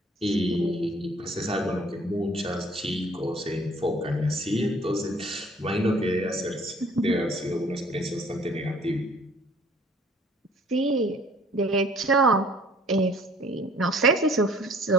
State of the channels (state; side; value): normal; both; correlation 0.54